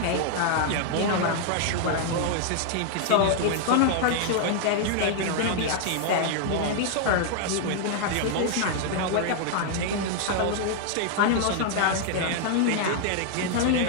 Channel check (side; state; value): both; different; correlation 0.00